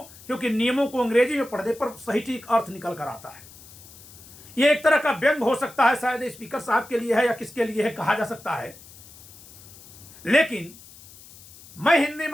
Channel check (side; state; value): left; noise; hiss, 20 dB below the sound